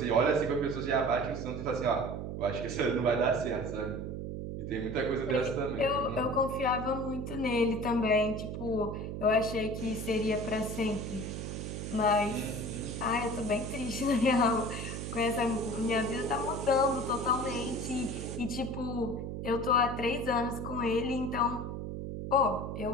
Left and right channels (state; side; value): noise; right; hum, 5 dB below the sound